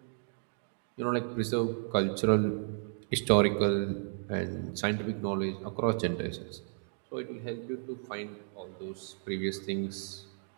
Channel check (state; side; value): silent; left; digital silence